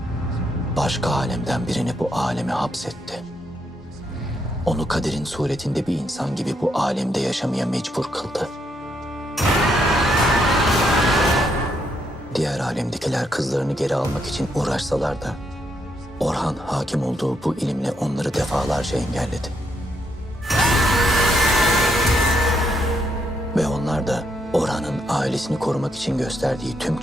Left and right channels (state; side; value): normal; both; correlation 0.77